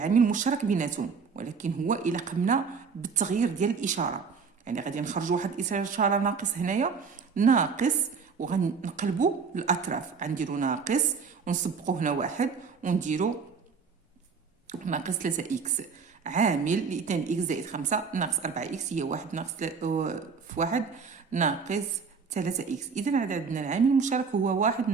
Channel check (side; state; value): left; quieter; 5.5 dB